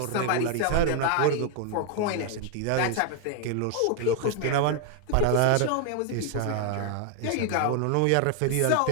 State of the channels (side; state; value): both; different; correlation 0.00